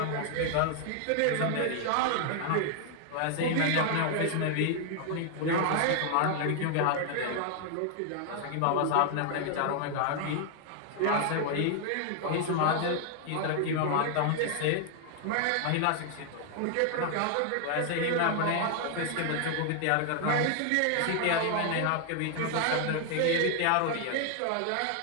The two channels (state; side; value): different; both; correlation 0.00